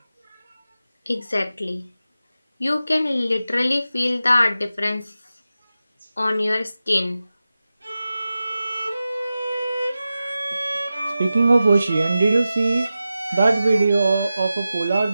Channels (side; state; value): both; inverted; correlation -0.93